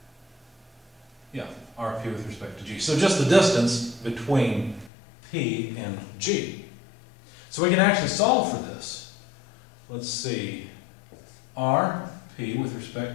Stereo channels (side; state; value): right; drops out; at 4.9 s